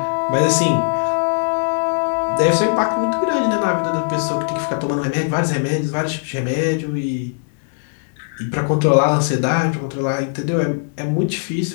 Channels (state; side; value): silent; right; 66 dB below the other